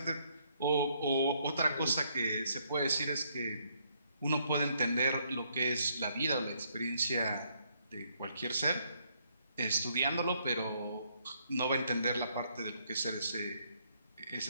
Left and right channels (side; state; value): both; inverted; correlation -0.71